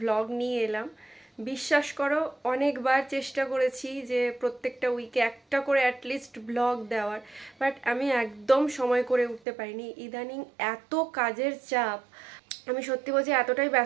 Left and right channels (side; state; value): left; drops out; at 9.4 s